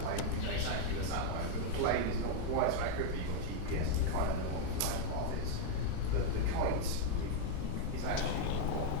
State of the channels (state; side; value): different; both; correlation 0.00